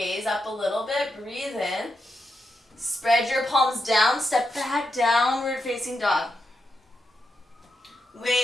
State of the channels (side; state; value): both; normal; correlation 0.85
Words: up a little bit, breathe in. Spread your palms down, step back, downward facing dog.